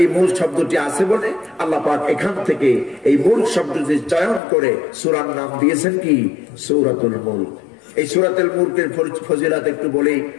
এই মুলক শব্দটি আছে বলে আল্লাহ পাক এখান থেকে এই মুলক শব্দটি চয়ন করে সূরার নাম দিয়েছেন কি? সূরাতুল মুলক। এই সূরাতুল মুলকের ফজিলত একটু বলেই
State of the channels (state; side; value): drops out; right; at 4.4 s